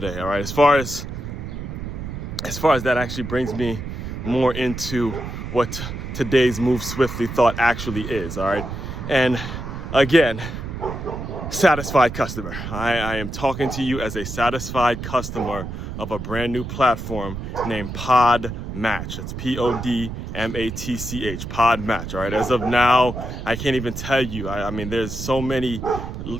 All right. As far as that actually brings me more into what today's Move Swiftly thought actually is. All right. And again, satisfied customer. I am talking to you as a satisfied customer of a brand new platform named Podmatch. It's Podmatch, Podmatch. All right. As of now, I can't even tell you. I mean, there's so many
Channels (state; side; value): noise; right; rumble, 7 dB below the sound